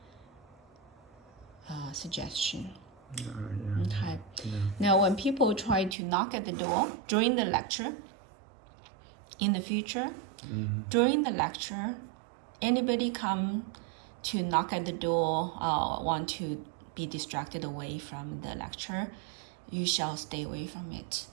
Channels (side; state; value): left; drops out; at 6.0 s